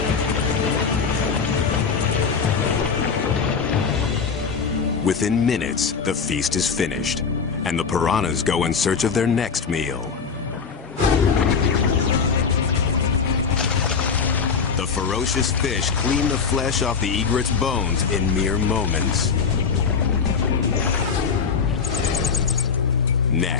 Within minutes, the feast is finished, and the piranhas go in search of their next meal. The ferocious fish clean the flesh off the egret's bones in mere moments.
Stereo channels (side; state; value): right; quieter; 5.8 dB